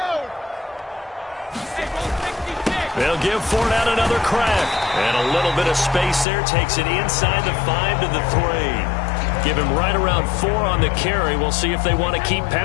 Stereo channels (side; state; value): right; drops out; at 6.2 s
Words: They'll give Fournette another crack. And a little bit of space there, takes it inside the 5 to the 3. Give him right around 4 on the carry. We'll see if they want to keep